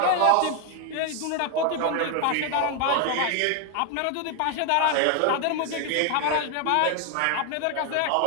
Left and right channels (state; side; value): different; both; correlation 0.01